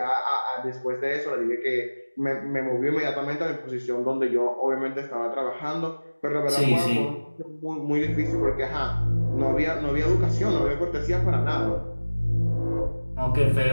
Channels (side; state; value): both; inverted; correlation -1.00